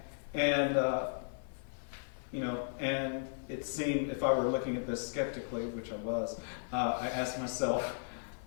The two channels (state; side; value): silent; right; 54 dB below the other